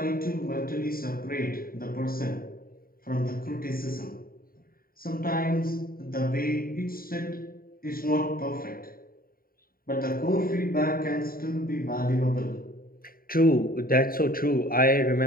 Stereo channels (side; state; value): right; late; 0.43 ms